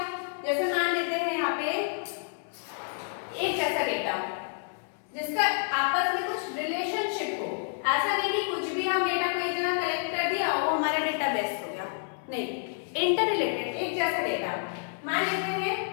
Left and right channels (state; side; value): silent; right; 59 dB below the other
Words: जैसे मान लेते हैं यहाँ पे एक जैसा डेटा जिसका आपस में कुछ रिलेशनशिप हो। ऐसा नहीं कि कुछ भी हम डेटा को एक जगह कलेक्ट कर दिया और वो हमारा डेटाबेस हो गया, नहीं। इंटर रिलेटेड एक जैसा डेटा, मान लेते हैं